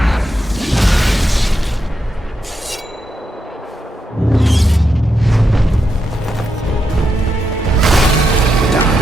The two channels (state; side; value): normal; both; correlation 0.84